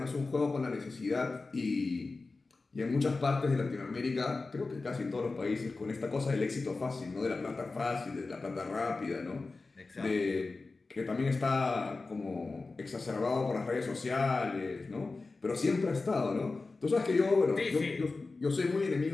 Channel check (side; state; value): right; quieter; 3.7 dB